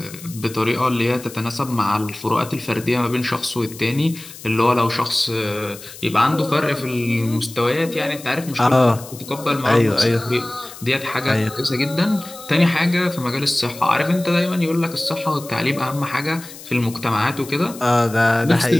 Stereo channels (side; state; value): left; noise; hiss, 16 dB below the sound